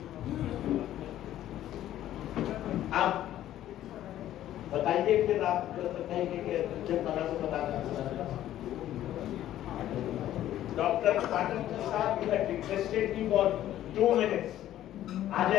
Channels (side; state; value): right; quieter; 12.7 dB